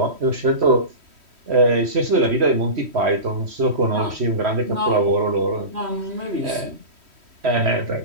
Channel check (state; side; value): late; left; 3.1 ms